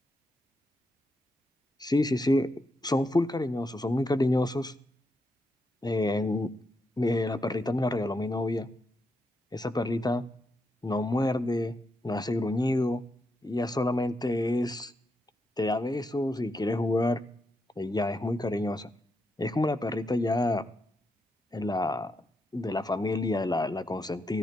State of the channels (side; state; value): both; normal; correlation 0.82